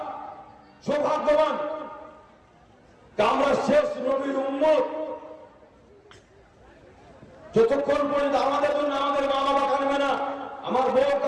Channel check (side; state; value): both; identical; correlation 1.00